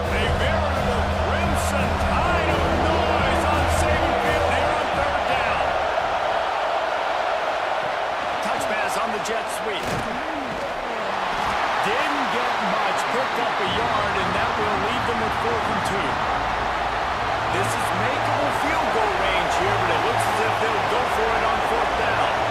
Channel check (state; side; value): identical; both; correlation 1.00